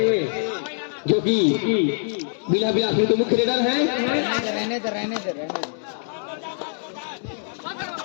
जो कि बिलासपुर के मुख्य रेडर हैं। रहने दे।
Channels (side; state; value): right; silent; 62 dB below the other